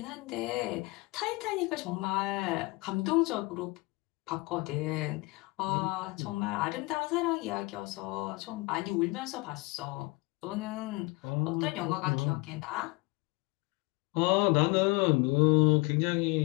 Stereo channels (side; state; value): right; quieter; 24.8 dB